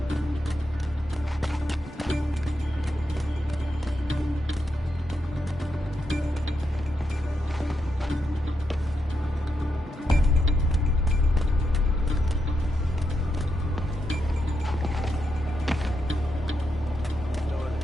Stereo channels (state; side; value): normal; both; correlation 0.84